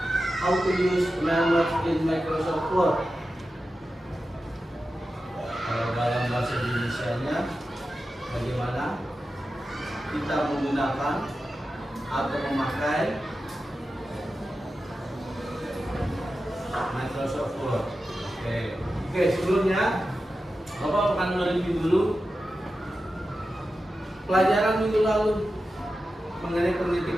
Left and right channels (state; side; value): normal; both; correlation 0.92